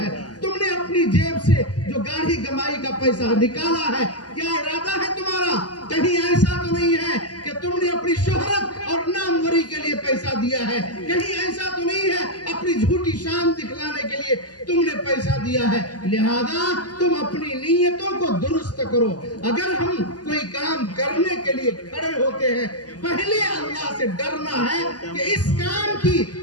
تم نے اپنی جیب سے جو گاڑی کمائی کا پیسہ نکالا ہے، کیا ارادہ ہے تمہارا؟ کہیں ایسا تو نہیں ہے کہ تم نے اپنی شہرت اور ناموری کے لیے پیسہ دیا ہے، کہیں ایسا تو نہیں ہے اپنی جھوٹی شان دکھلانے کے لیے تم نے پیسہ دیا ہے۔ لہذا تم اپنی نیتوں کو درست کرو۔ اگر ہم کوئی کام کرنے کے لیے کھڑے ہوتے ہیں پہلے اللہ سے ڈرنا ہے کہ اس کام کی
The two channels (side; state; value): right; late; 0.68 ms